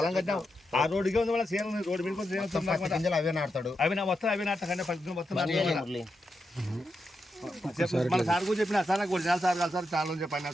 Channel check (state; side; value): normal; both; correlation 0.86